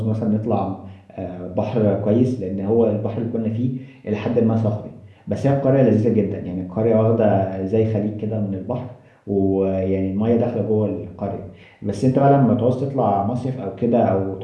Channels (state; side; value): identical; both; correlation 1.00